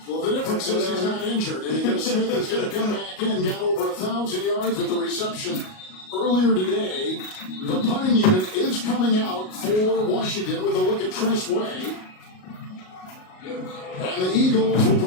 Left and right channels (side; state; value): right; late; 38 ms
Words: Well, the difference is he's not injured, and because Smith is going to come back in, got over 1,000 yards with the reception earlier today. The punting unit is coming out for Washington with a look at Tress Way. And the Eagles will